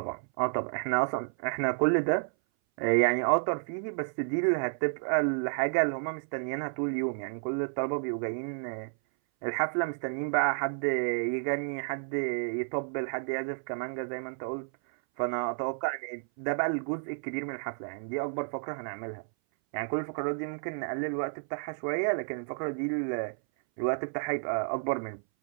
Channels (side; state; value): left; silent; 57 dB below the other